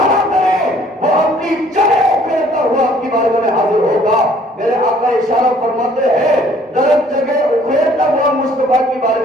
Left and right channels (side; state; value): both; normal; correlation 0.58